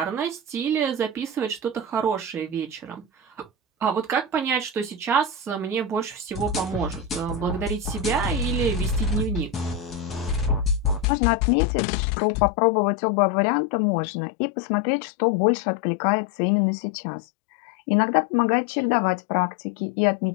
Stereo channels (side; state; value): right; drops out; at 11.1 s